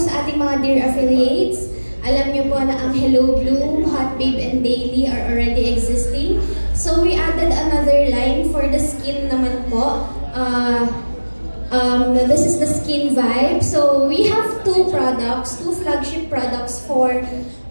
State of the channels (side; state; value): both; inverted; correlation -1.00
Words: sa ating mga dear affiliates, alam niyo po na ang Hello Bloom, Hot Babe and Daily are already existing. So, we added another line for the skin naman po. This is the Skin Vibe. So, we have two flagship products for